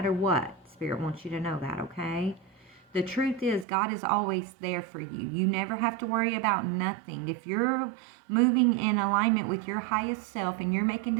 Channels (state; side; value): drops out; left; at 3.7 s